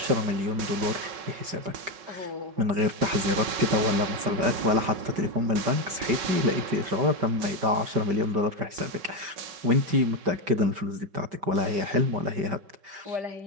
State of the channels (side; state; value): left; late; 5.1 ms